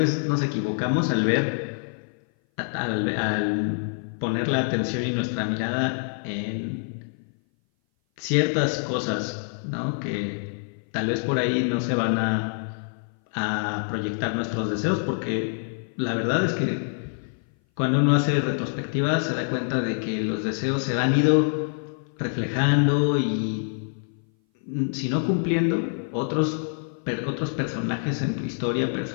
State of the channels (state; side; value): silent; right; 58 dB below the other